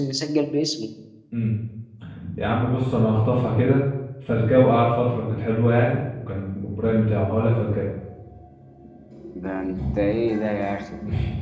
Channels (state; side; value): identical; both; correlation 1.00